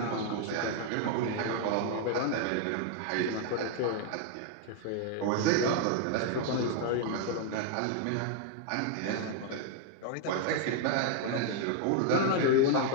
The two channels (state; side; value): different; both; correlation 0.00